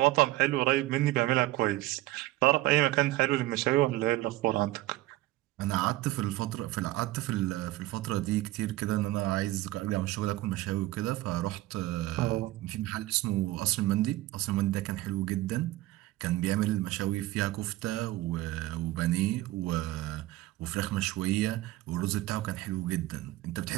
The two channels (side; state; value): left; quieter; 17.4 dB